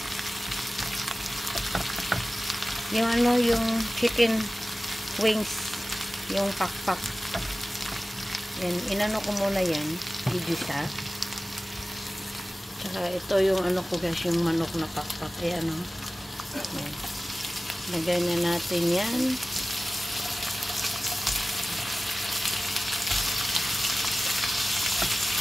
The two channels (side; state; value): both; normal; correlation 0.97